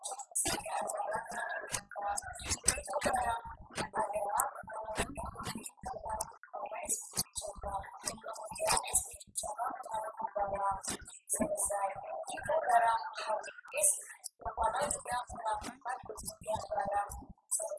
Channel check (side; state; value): both; identical; correlation 1.00